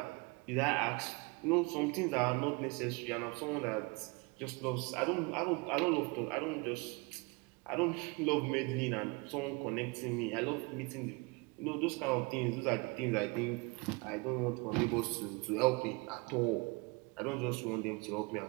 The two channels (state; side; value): quieter; left; 28.2 dB